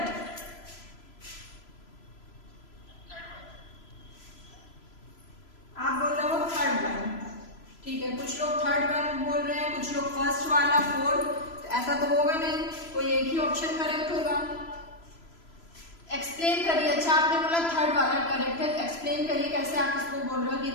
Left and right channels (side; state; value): right; late; 3.0 ms